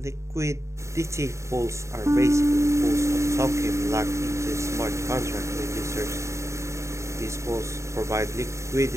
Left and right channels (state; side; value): late; left; 0.14 ms